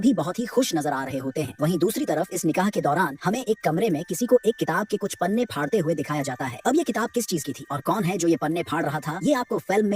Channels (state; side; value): identical; both; correlation 1.00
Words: बहुत ही खुश नजर आ रहे होते हैं। वहीं दूसरी तरफ इस निकाह के दौरान हमें एक कमरे में किसी को एक किताब के कुछ पन्ने फाड़ते हुए दिखाया जाता है। अब ये किताब किस चीज की थी और कौन है जो ये पन्ने फाड़ रहा था, ये आपको फिल्म